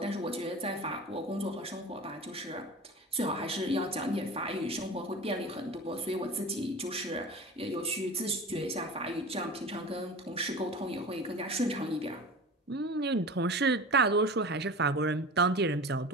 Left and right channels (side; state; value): both; normal; correlation 0.34